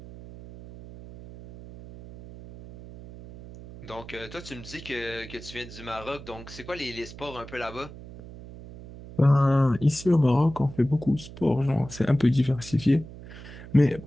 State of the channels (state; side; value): noise; right; hum, 15 dB below the sound